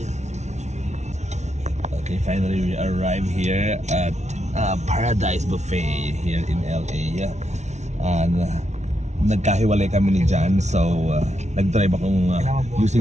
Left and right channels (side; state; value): left; late; 0.33 ms